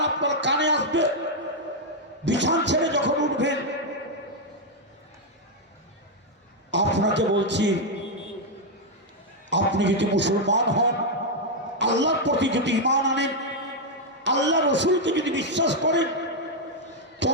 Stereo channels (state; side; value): normal; both; correlation 0.00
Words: আপনার কানে আসবে, বিছান ছেড়ে যখন উঠবেন, আপনাকে বলছি আপনি যদি মুসলমান হন, আল্লাহর প্রতি যদি ঈমান আনেন, আল্লাহ রসুলকে যদি বিশ্বাস করেন,